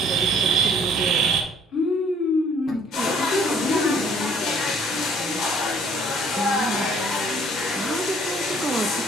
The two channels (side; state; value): both; normal; correlation 0.58